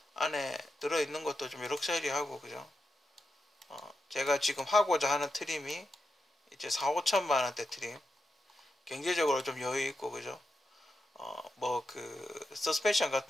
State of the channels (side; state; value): both; normal; correlation 0.87